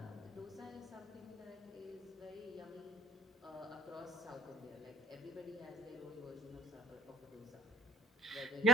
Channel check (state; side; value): normal; both; correlation 0.53